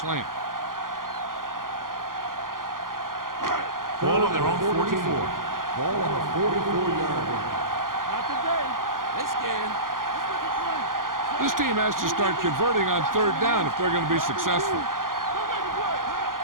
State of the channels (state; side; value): late; left; 0.90 ms